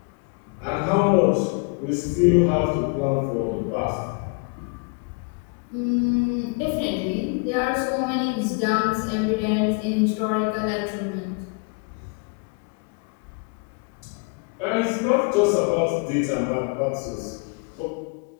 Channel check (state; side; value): quieter; right; 32.5 dB